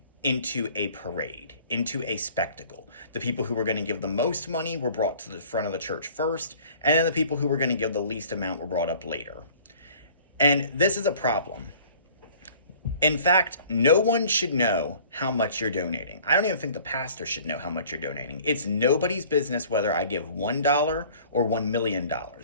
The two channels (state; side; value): inverted; both; correlation -0.51